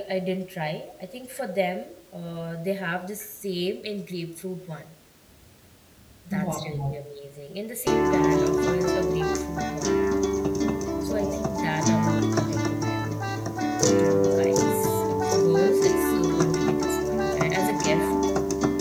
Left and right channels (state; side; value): identical; both; correlation 1.00